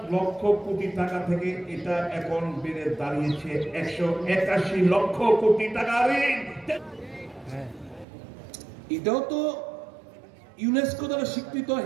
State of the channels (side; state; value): left; drops out; at 8.1 s